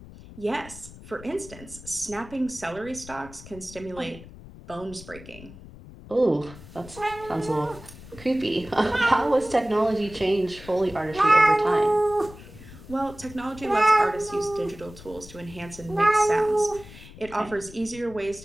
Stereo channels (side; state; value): left; noise; rumble, 17 dB below the sound